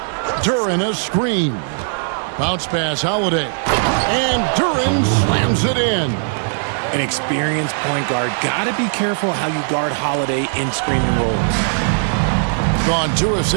Duran a screen. Bounce pass, Holiday. And Duran slams it in. An experienced point guard. Gotta be careful how you guard Holiday in screen and rolls. Gone 2 of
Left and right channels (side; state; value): left; silent; 67 dB below the other